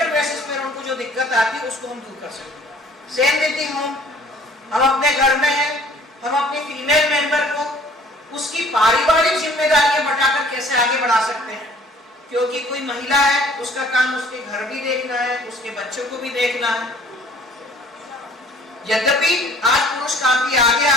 बेसिस पर उनको जो दिक्कत आती है उसको हम दूर कर सकें। सेम देती हूँ, हम अपने घर में हैं, हम अपनी फीमेल मेंबर को उसकी पारिवारिक जिम्मेदारियां बटाकर कैसे आगे बढ़ा सकते हैं, क्योंकि कोई महिला है उसका काम उसके घर भी देखना है, उसके बच्चों को भी देखना है। यद्यपि आज पुरुष काफी आगे आ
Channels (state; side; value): normal; both; correlation 0.54